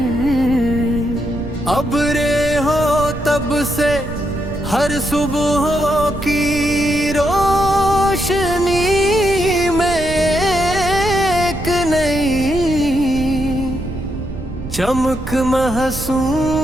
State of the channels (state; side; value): noise; right; rumble, 9 dB below the sound